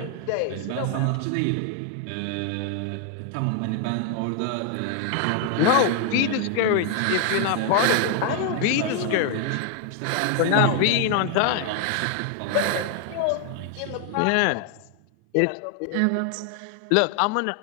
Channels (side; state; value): both; different; correlation 0.00